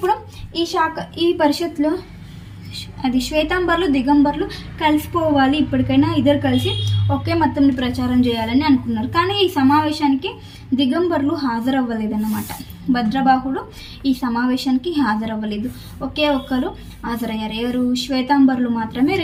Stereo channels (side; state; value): both; identical; correlation 1.00